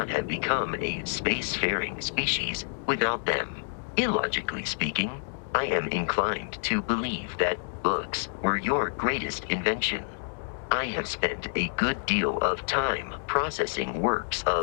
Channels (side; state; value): right; silent; 59 dB below the other